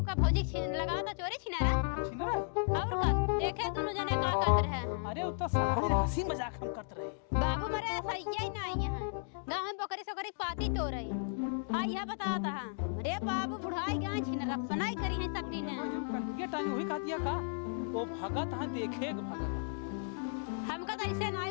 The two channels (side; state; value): right; silent; digital silence